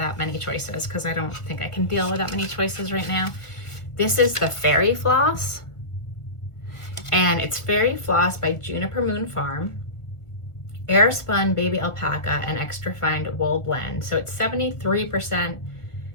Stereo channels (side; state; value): right; late; 1.4 ms